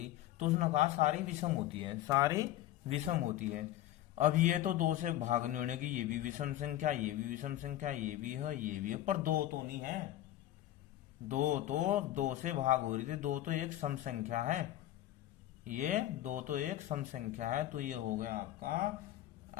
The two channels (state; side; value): quieter; right; 13.9 dB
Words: तो उसने कहा सारी विषम होती है, सारी विषम होती है। अब ये तो 2 से भाग नहीं होने की, ये भी विषम संख्या, ये भी विषम संख्या, ये भी है, ये भी है, पर 2 तो नहीं है। 2 तो 2 से भाग हो रही थी, 2 तो एक सम संख्या है, ये 2 तो एक सम संख्या है। तो ये हो गया आपका